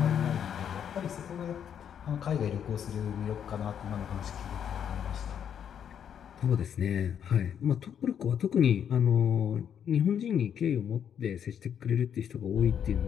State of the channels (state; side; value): quieter; right; 8.6 dB